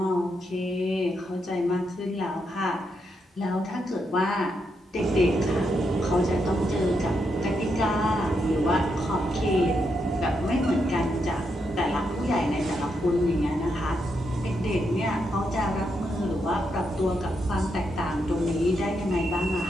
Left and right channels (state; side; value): normal; both; correlation 0.81